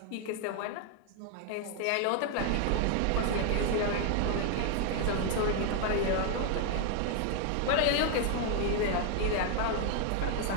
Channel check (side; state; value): both; different; correlation 0.00